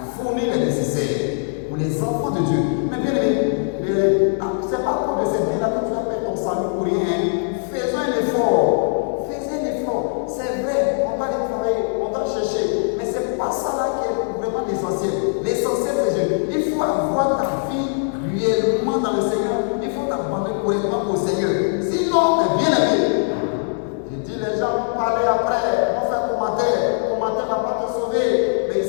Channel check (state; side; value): silent; right; 65 dB below the other